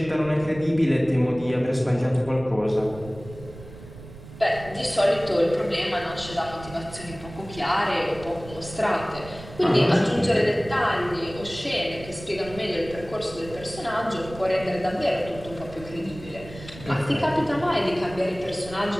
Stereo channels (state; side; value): noise; right; rumble, 16 dB below the sound